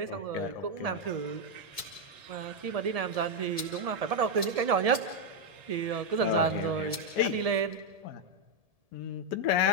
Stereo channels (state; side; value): late; left; 1.7 ms